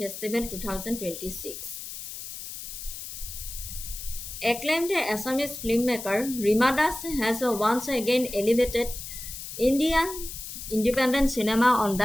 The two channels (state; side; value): noise; left; hiss, 10 dB below the sound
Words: Festival 2026. Acclaimed Assamese filmmaker Rima Das has once again elevated Indian independent cinema on